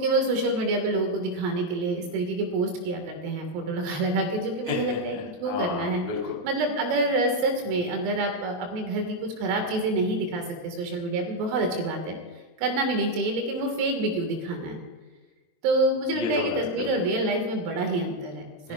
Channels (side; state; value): left; late; 23 ms